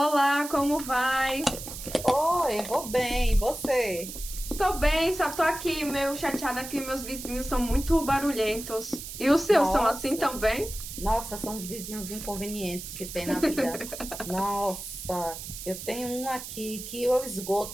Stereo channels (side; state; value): right; noise; hiss, 10 dB below the sound